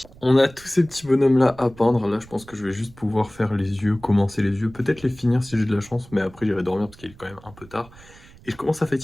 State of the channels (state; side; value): noise; right; rumble, 22 dB below the sound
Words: On a tous ces petits bonhommes-là à peindre. Là, je pense que je vais juste pouvoir faire les yeux, commencer les yeux, peut-être les finir si j'ai de la chance, mais après, j'irai dormir parce qu'il est quand même un peu tard. Et je commence à